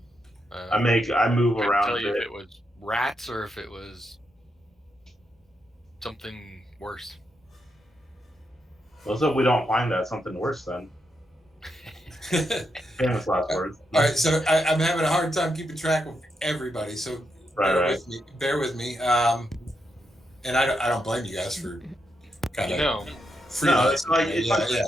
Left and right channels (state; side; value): normal; both; correlation 0.83